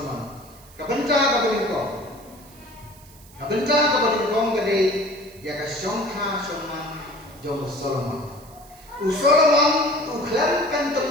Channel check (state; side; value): noise; right; hiss, 24 dB below the sound